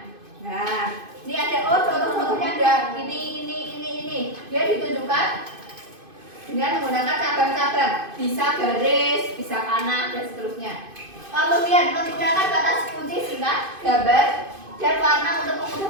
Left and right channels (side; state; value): left; late; 2.5 ms